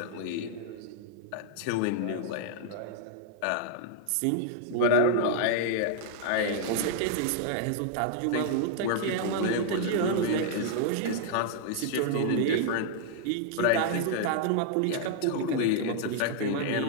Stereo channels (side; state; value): both; different; correlation 0.00